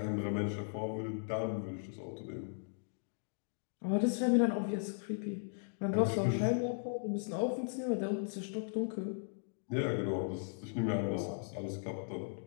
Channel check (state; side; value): silent; right; digital silence